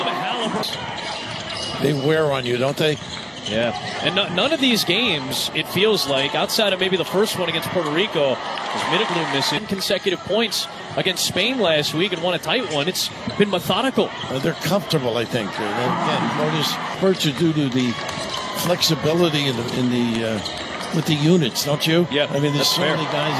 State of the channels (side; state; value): both; identical; correlation 1.00